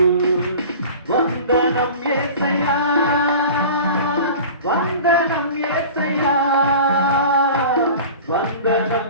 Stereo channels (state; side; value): inverted; both; correlation -0.38